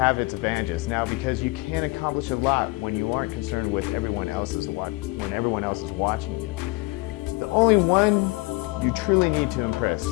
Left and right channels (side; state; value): right; quieter; 23.9 dB